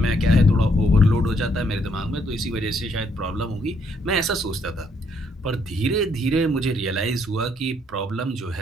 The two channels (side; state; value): both; normal; correlation 0.71